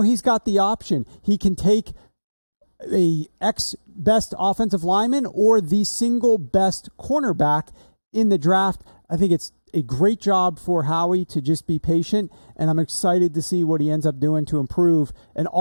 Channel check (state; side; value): inverted; both; correlation -1.00